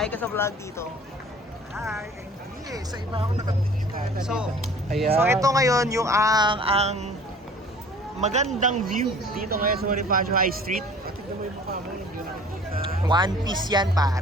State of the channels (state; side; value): normal; both; correlation 0.48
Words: ka sa vlog dito. Hi, hindi sa iba ako nakatingin. So Ayan. ito ngayon yung ang magandang view dito ngayon sa Bonifacio High Street. Tignan mo yung mukha mo, hindi na nakikita. One Piece yan